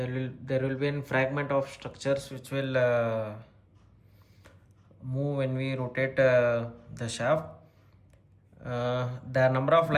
will be a fragment of structures which will move when we rotate the shaft. The number of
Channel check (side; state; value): both; identical; correlation 1.00